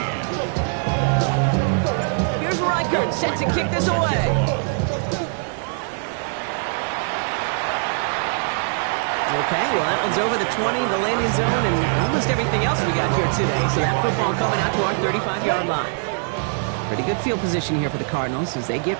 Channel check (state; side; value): silent; left; 58 dB below the other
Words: Here's Reichert set to kick this away. Okay, well, that one's over the 20, the landing zone, and almost everything else we got here today. So that football coming out to our 35-yard line. Pretty good field position here for the Cardinals as they